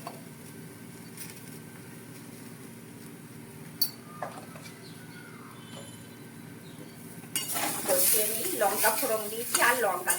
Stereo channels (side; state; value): both; identical; correlation 1.00